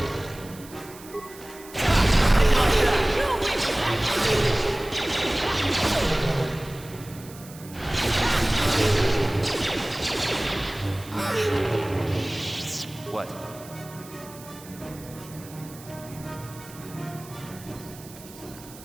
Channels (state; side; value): noise; right; hiss, 19 dB below the sound